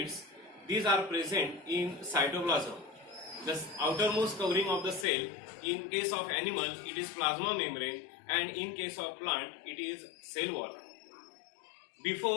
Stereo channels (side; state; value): right; drops out; at 5.1 s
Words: these are present in cytoplasm. The outermost covering of the cell, in case of animal it is plasma membrane, and in case of plant it is cell wall.